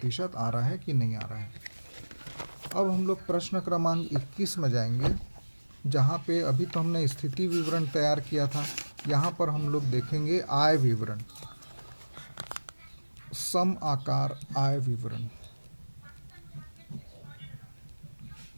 आ रहा है कि नहीं आ रहा है। अब हम लोग प्रश्न क्रमांक 21 में जाएंगे, जहाँ पे अभी तो हमने स्थिति विवरण तैयार किया था। यहाँ पर हम लोग देखेंगे आय विवरण, सम आकार आय विवरण।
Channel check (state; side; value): inverted; both; correlation -1.00